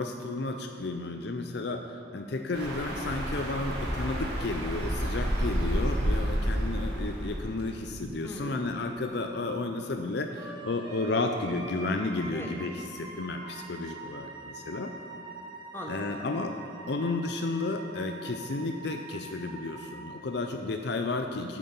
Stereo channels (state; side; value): normal; both; correlation 0.50